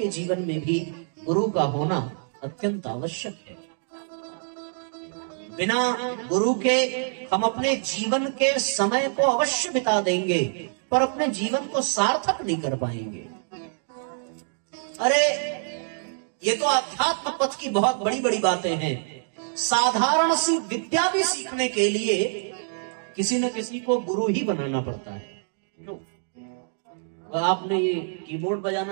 जीवन में भी गुरु का होना अत्यंत आवश्यक है। बिना गुरु के हम अपने जीवन के समय को अवश्य बिता देंगे, पर अपने जीवन को सार्थक नहीं कर पाएंगे। अरे ये तो अध्यात्म पथ की बहुत बड़ी बड़ी बातें हैं। साधारण सी विद्या भी सीखने के लिए किसी न किसी को गुरु ही बनाना पड़ता है। क्यों? आपने ये कीबोर्ड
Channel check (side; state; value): left; silent; digital silence